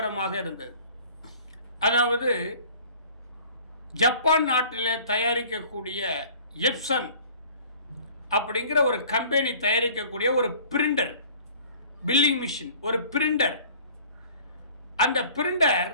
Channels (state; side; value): inverted; both; correlation -0.49